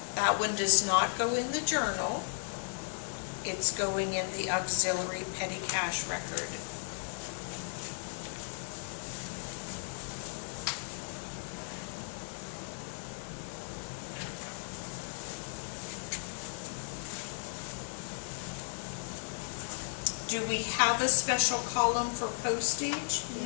That one does not go in the journal. It's going in the auxiliary petty cash record. Do we have a special column for postage?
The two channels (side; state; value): right; silent; digital silence